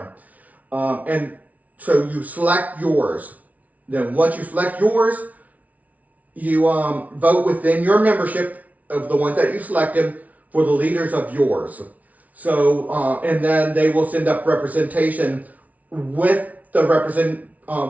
And so you select yours. Then once you select yours, you vote within your membership of the ones that you selected for the leaders of yours. So and then they will send up representation with the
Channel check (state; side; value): late; left; 0.071 ms